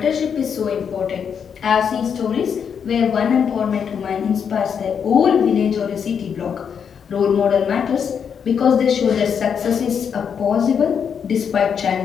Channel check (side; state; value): right; quieter; 7.2 dB